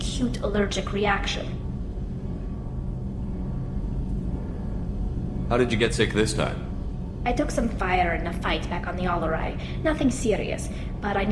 allergic reaction. How did you get sick this time? I took some fire in a fight back on the Allerai. Nothing serious, but I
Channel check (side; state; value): both; identical; correlation 1.00